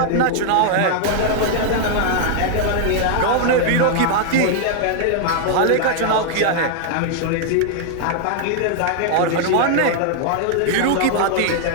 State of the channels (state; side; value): different; both; correlation 0.00